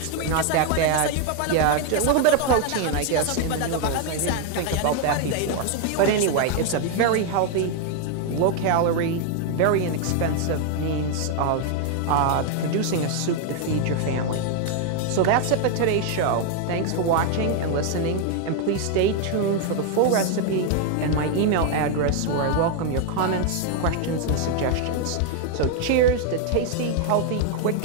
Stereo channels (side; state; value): both; different; correlation 0.01